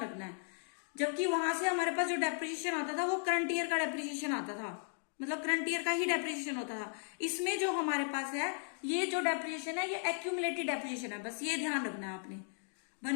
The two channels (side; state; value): right; silent; 54 dB below the other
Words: रखना है। जबकि वहां से हमारे पास जो डेप्रिसिएशन आता था वो करंट ईयर का डेप्रिसिएशन आता था, मतलब करंट ईयर का ही डेप्रिसिएशन होता था। इसमें जो हमारे पास है, ये जो डेप्रिसिएशन है ये एक्यूमुलेटेड डेप्रिसिएशन है, बस ये ध्यान रखना है आपने।